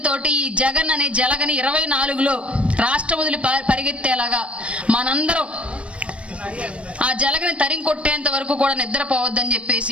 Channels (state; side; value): late; left; 0.061 ms